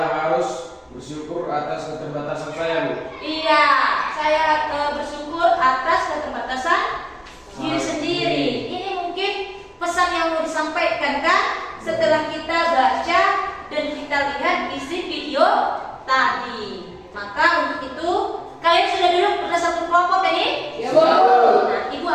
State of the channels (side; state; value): both; identical; correlation 1.00